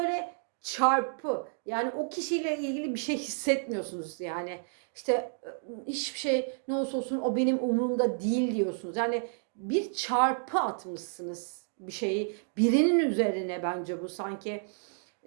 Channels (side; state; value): left; silent; digital silence